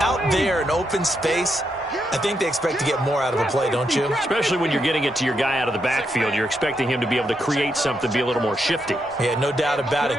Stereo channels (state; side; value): normal; both; correlation 0.81